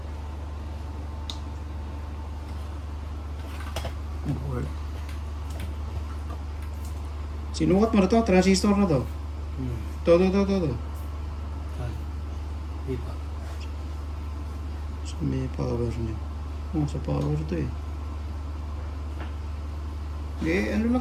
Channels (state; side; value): identical; both; correlation 1.00